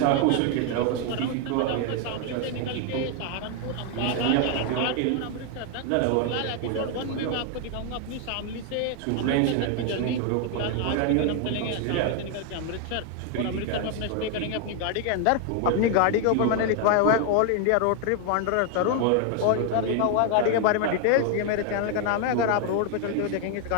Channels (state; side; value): different; both; correlation 0.00